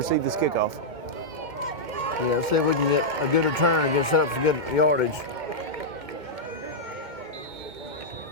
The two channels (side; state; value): left; late; 2.1 ms